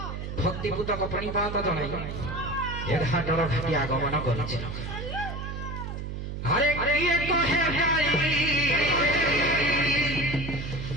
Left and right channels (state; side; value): noise; right; hum, 6 dB below the sound